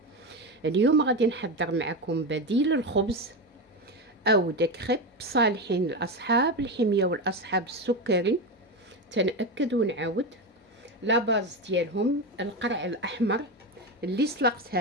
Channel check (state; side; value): normal; both; correlation 0.16